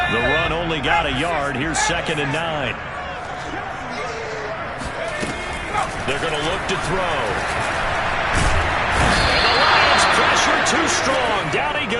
The run only got a yard. Here's 2nd and 9. They're going to look to throw. And the Lions pressure too strong. Down he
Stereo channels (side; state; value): both; identical; correlation 1.00